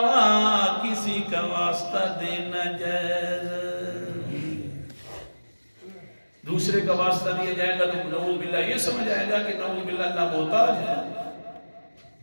کسی کا واسطہ دینا جائز ہے۔ دوسرے کا واسطہ دیا جائے گا تو نعوذ باللہ یہ سمجھ آئے گا کہ نعوذ باللہ اللہ محتاج ہے۔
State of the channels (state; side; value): inverted; both; correlation -1.00